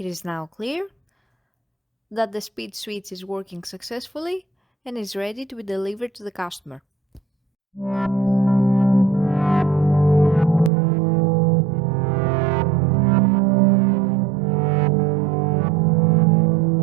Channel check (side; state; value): left; drops out; at 10.7 s